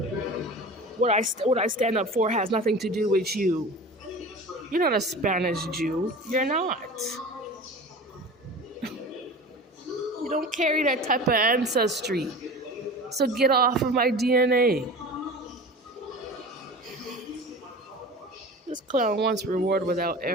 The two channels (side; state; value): both; normal; correlation 0.36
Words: What I stand up for has nothing to do with you. You're not a Spanish Jew. You're not. You don't carry that type of ancestry. So get off of my DNA. This clown wants reward without